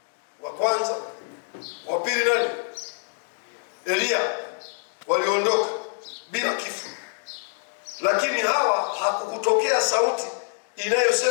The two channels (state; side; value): silent; right; 55 dB below the other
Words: wa kwanza, wa pili nani? Elia, waliondoka bila kifo. Lakini hawa hakukutokea sauti